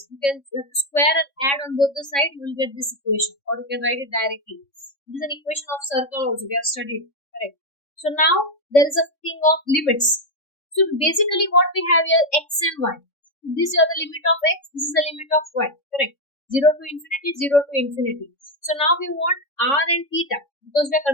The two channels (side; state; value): right; late; 3.6 ms